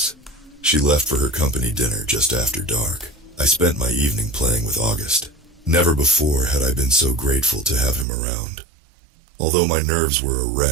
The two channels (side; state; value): left; drops out; at 8.1 s